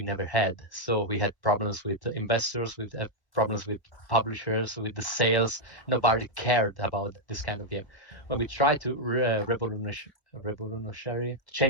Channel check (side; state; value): right; late; 1.0 ms